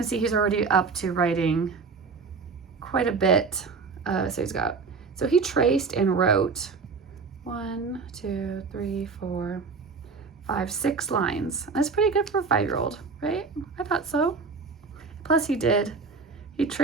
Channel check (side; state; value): left; quieter; 4.8 dB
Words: see he's already up to writing quite a bit. So he traced and wrote 1, 2, 3, 4, 5, 6 lines. That's pretty good for a 5-year-old, right? I thought so. Plus he